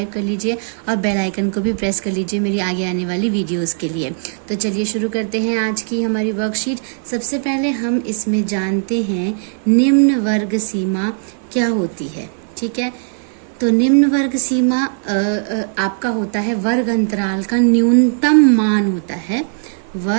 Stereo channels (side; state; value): left; silent; 55 dB below the other